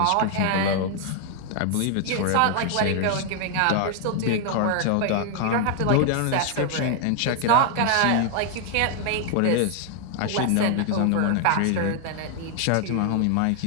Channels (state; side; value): different; both; correlation 0.00